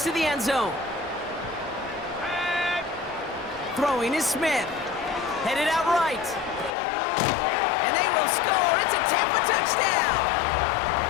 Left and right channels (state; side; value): drops out; right; at 6.8 s